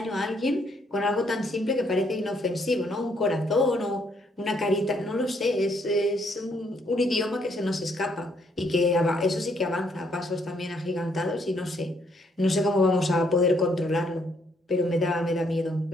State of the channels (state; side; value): normal; both; correlation 0.71